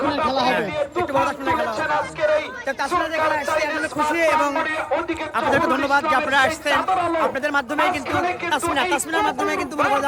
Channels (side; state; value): both; identical; correlation 1.00